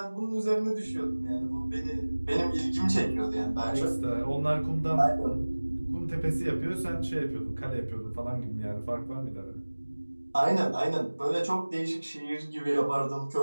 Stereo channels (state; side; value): inverted; both; correlation -1.00